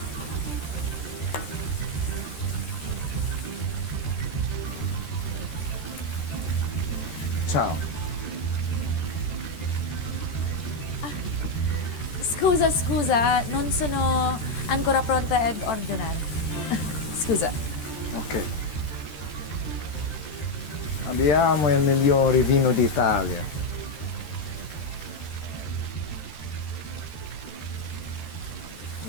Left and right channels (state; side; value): late; right; 13 ms